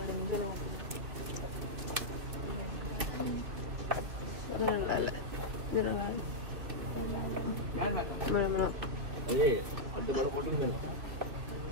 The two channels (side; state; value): left; late; 2.9 ms